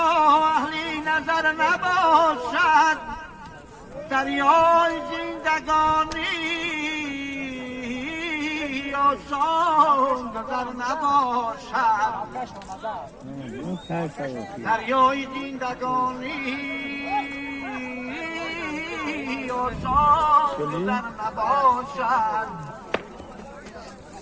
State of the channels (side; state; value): both; identical; correlation 1.00